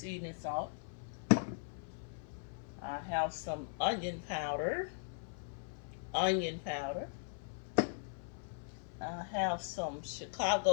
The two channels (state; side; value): silent; right; 52 dB below the other